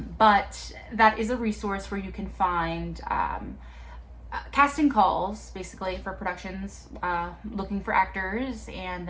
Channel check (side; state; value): both; identical; correlation 1.00